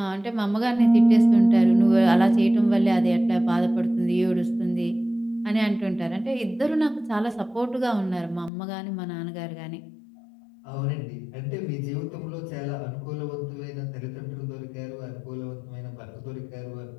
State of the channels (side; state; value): right; drops out; at 8.5 s